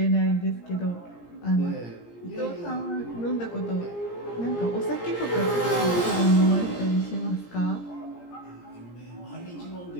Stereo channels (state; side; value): late; right; 17 ms